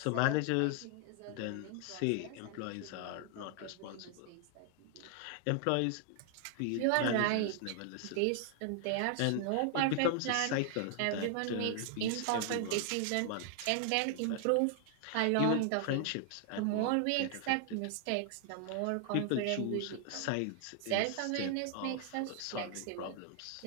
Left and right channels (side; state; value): both; different; correlation 0.00